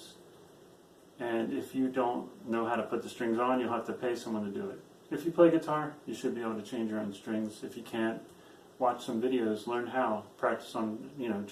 And if you don't know how to put the strings on, you'll have to pay someone to do it. If you play guitar, you should be able to change your own strings. If you can't, watch some videos, learn how, practice on, you know,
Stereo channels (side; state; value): both; identical; correlation 1.00